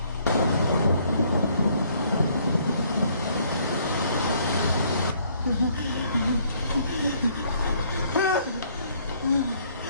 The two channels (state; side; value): inverted; both; correlation -0.65